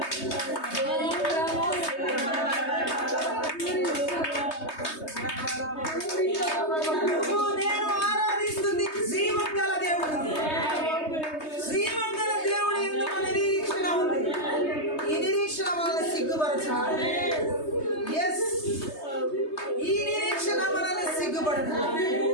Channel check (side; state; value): right; late; 3.2 ms